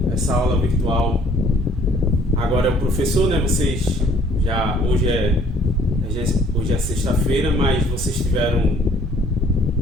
essa aula virtual, agora é o professor, né? Vocês já hoje é sexta-feira, mas vocês tiveram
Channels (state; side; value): normal; both; correlation 0.59